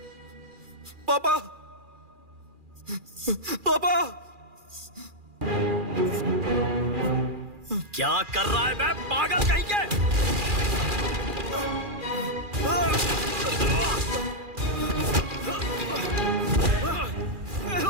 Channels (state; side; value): late; left; 2.4 ms